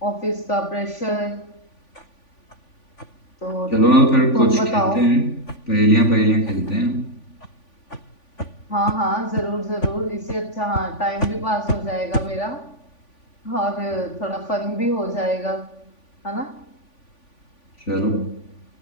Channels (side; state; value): right; late; 3.5 ms